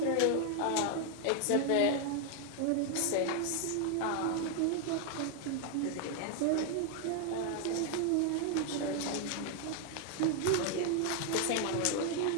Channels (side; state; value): both; different; correlation 0.00